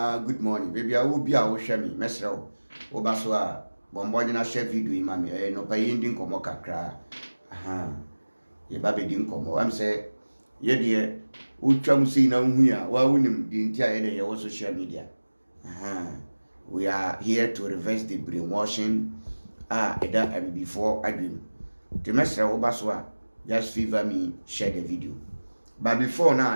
good morning baby a wo bia wo hwe me mesre wo ba so a bombo na share video yi ma me no pa yi ndi nkomo kakra aha ye ba be di nkomo am say ye de utwam sei na hu ya wa wunim di ntia ye de ye wo social media aha we are here to reverse the brainwashing eda before adwim the mesre wo ba so a just favor me share the video. But before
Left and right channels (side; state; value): both; inverted; correlation -1.00